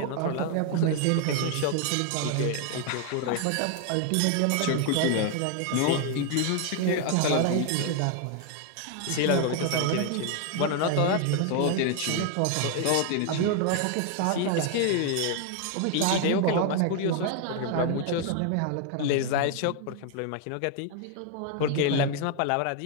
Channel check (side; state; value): both; different; correlation 0.01